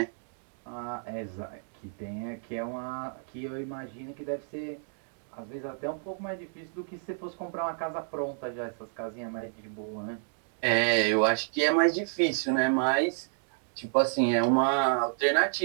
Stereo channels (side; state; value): left; silent; digital silence